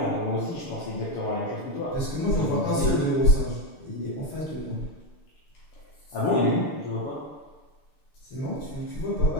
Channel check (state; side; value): late; right; 6.7 ms